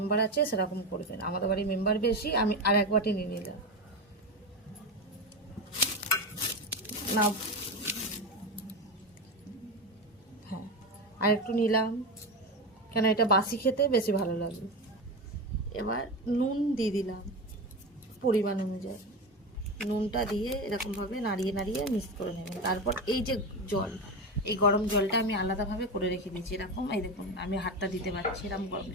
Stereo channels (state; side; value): normal; both; correlation 0.19